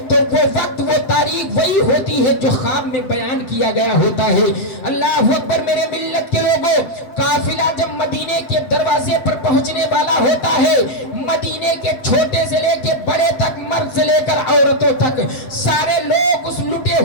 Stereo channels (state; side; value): late; right; 7.8 ms